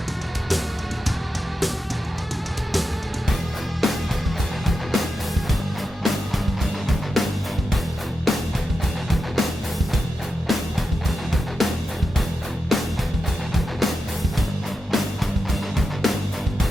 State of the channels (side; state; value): both; normal; correlation 0.89